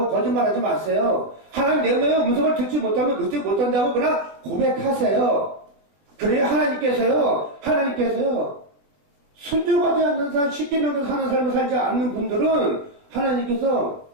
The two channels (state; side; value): late; left; 21 ms